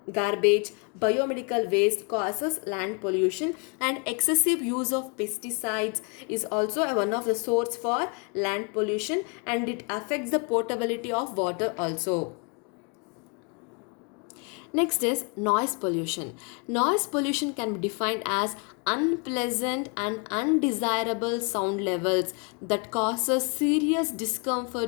garbage, biomedical waste causes land pollution, and excessive use of pesticides is also one of the source for land pollution, and it affects the potability of water also. Next is noise pollution. Noise pollution can be defined as unpleasant and undesirable sound levels that causes serious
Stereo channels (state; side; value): quieter; right; 34.6 dB